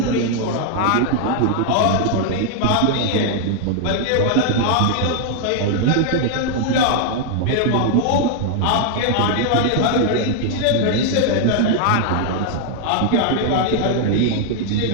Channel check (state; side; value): different; both; correlation 0.00